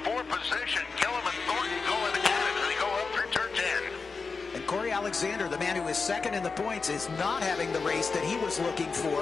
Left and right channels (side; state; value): right; quieter; 4.6 dB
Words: 4 position. Gillum and Thornton going at it as they go up through turn 10. And Corey Alexander, the man who is second in the points, is not having the race that he was looking